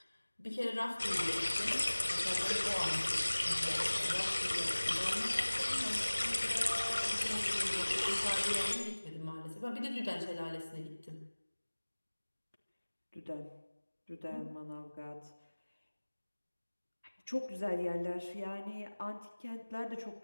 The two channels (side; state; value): both; inverted; correlation -1.00